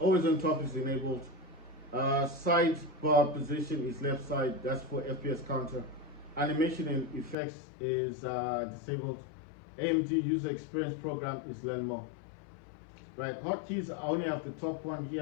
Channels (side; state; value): right; drops out; at 7.4 s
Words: on top is enabled, sidebar position is left side, that's for FPS counter, animation and effects is disabled, AMD user experience program is learn more. Right, hotkeys, I only have the top one